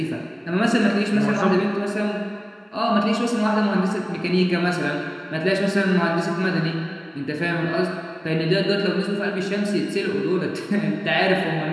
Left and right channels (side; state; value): both; identical; correlation 1.00